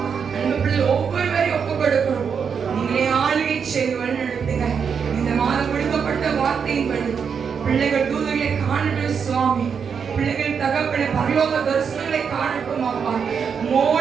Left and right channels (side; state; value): left; quieter; 6.6 dB